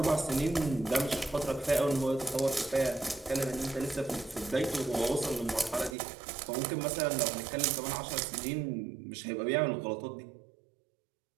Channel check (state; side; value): drops out; left; at 6.0 s